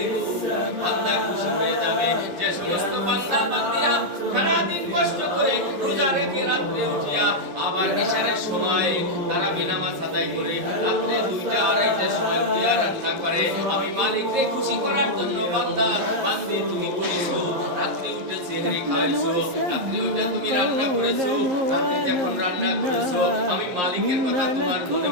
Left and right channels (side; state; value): left; late; 11 ms